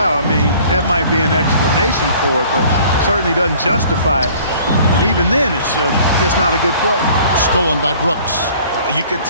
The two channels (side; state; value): both; inverted; correlation -0.52